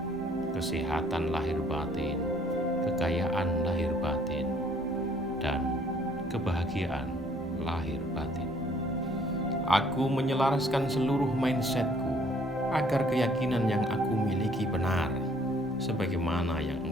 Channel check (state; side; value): normal; both; correlation 0.60